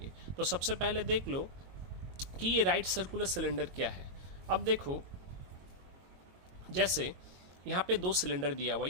तो सबसे पहले देख लो कि ये राइट सर्कुलर सिलेंडर क्या है। अब देखो, जैसे यहाँ पे दो सिलेंडर दिया हुआ,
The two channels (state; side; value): late; left; 22 ms